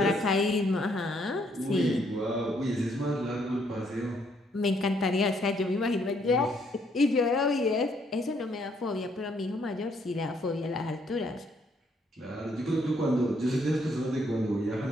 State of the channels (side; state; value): both; normal; correlation 0.69